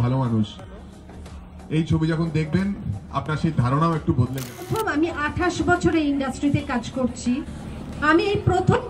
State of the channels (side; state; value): both; identical; correlation 1.00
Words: ভালো মানুষ। এই ছবি যখন দেখবেন আপনার সেই ধারণাও একটু বদলে যাবে। আমি 28 বছরে ইন্ডাস্ট্রিতে কাজ করছি, আমি এই প্রথম